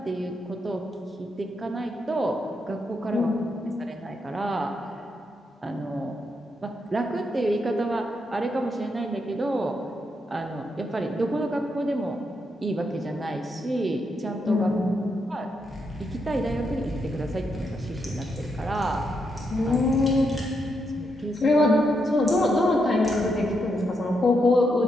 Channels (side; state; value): both; normal; correlation 0.81